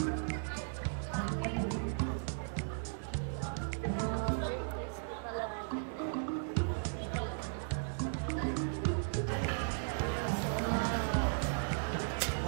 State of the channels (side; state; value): left; silent; digital silence